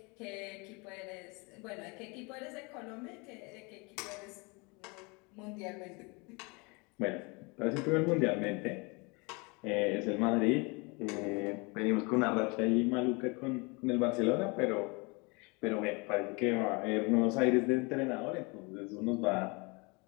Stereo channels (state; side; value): quieter; right; 29.0 dB